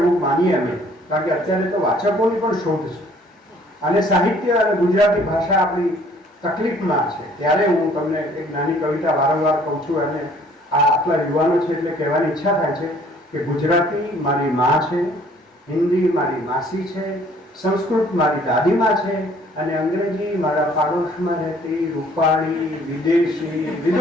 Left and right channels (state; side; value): normal; both; correlation 0.58